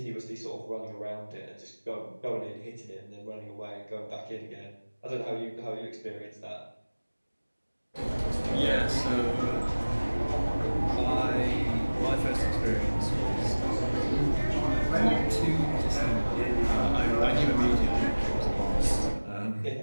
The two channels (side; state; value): both; inverted; correlation -1.00